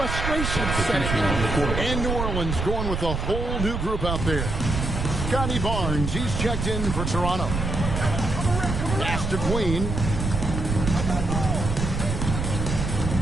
setting in. And New Orleans going with a whole new group out there. Scotty Barnes, he's checked in for Toronto. Pass to Queen.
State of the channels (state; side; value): noise; right; rumble, 2 dB below the sound